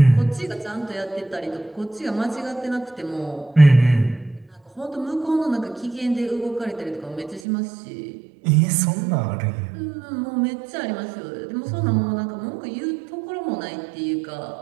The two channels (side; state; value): left; drops out; at 7.4 s